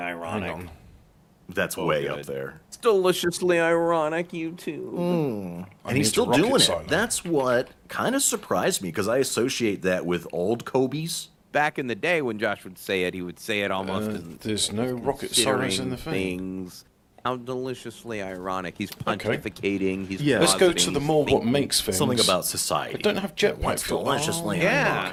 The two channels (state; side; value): identical; both; correlation 1.00